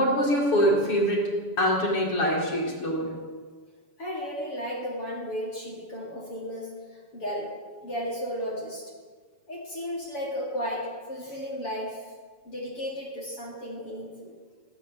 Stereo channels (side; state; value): right; late; 7.0 ms